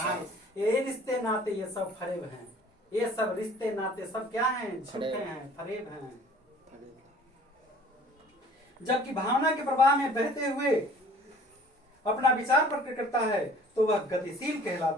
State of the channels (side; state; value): both; normal; correlation 0.50